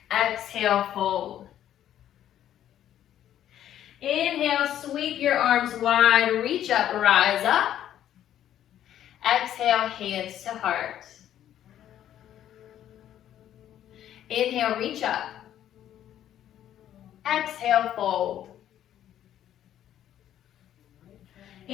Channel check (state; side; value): quieter; right; 11.2 dB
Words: Exhale, fold. Inhale, sweep your arms wide, reach up, rise up. Exhale, hands to heart. Inhale, reach up. Exhale, fold.